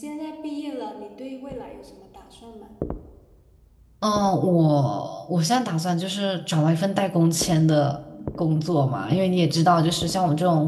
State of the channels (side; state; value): both; identical; correlation 1.00